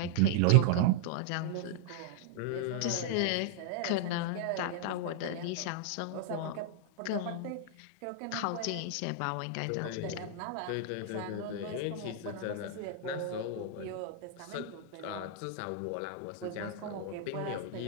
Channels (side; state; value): both; different; correlation -0.01